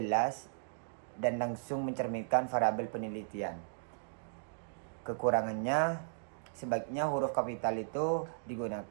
dan langsung mencerminkan variabel penelitian. Kekurangannya, sebaiknya huruf kapital itu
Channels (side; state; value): left; silent; digital silence